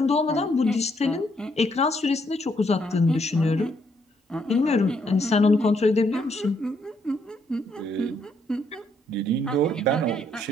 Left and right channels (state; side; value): normal; both; correlation 0.72